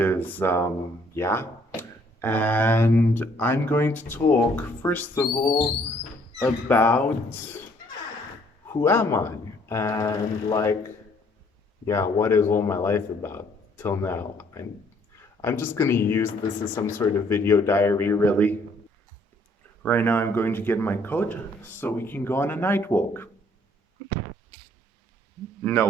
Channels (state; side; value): normal; both; correlation 0.63